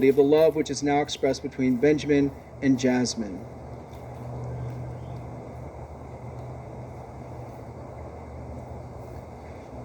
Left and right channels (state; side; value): identical; both; correlation 1.00